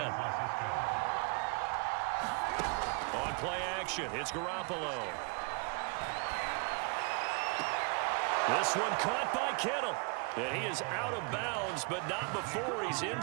On play action, it's Garoppolo. This one caught by Kittle. And he is out of bounds, but not before he's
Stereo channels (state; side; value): quieter; left; 34.5 dB